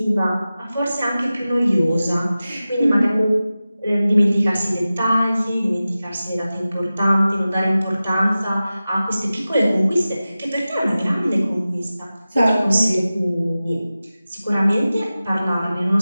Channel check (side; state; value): both; inverted; correlation -0.95